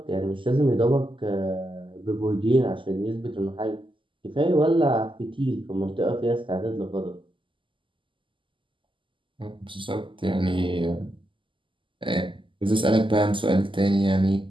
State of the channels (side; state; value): left; late; 0.25 ms